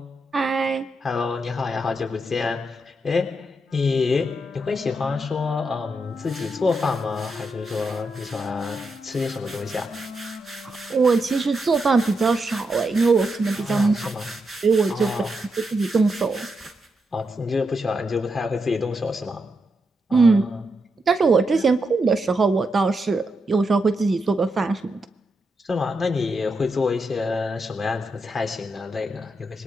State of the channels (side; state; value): both; normal; correlation 0.83